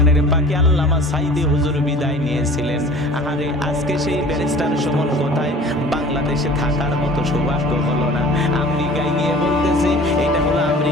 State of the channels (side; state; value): both; normal; correlation 0.45